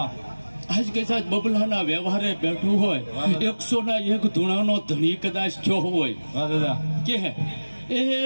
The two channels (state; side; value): inverted; both; correlation -1.00